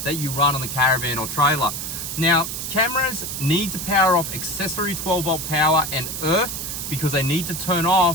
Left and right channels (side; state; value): right; noise; hiss, 5 dB below the sound